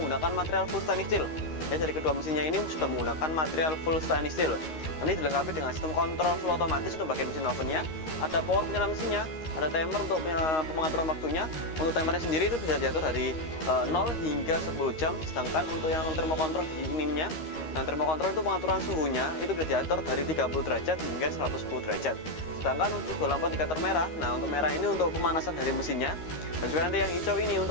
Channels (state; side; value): late; right; 13 ms